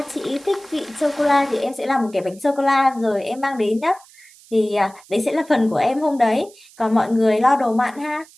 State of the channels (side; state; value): right; noise; hiss, 25 dB below the sound